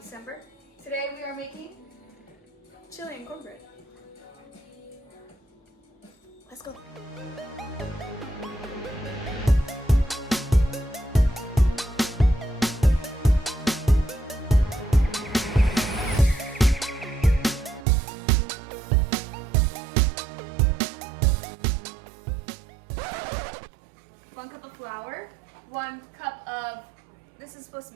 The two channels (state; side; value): drops out; left; at 17.9 s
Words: Today we are making chili and cornbread. Let's go. One cup of flour, 1 cup of, this is supposed to